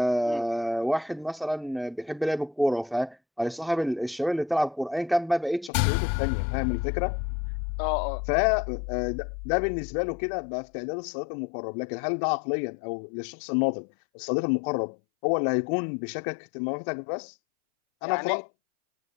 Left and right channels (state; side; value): drops out; right; at 5.7 s